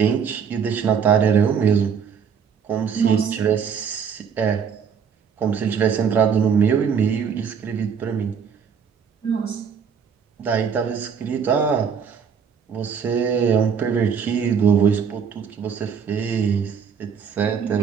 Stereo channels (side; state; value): left; quieter; 6.8 dB